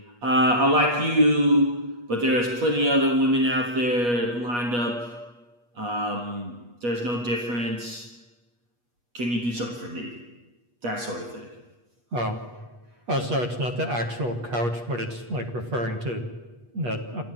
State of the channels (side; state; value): left; late; 8.3 ms